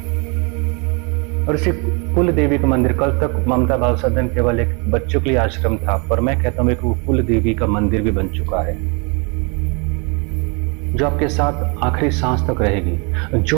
और इसी कुल देवी का मंदिर, कल तक ममता बाल सदन केवल एक बच्चों के लिए आश्रम था, पर मैं कहता हूँ एक कुल देवी का मंदिर भी बन चुका है, जो आपके साथ आखिरी सांस तक रहेगी।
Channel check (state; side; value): quieter; left; 33.0 dB